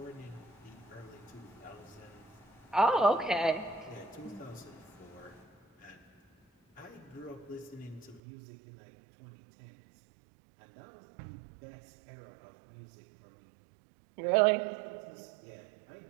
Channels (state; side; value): drops out; left; at 8.2 s